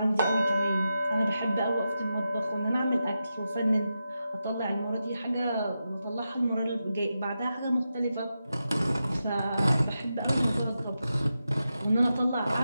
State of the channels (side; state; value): both; inverted; correlation -0.89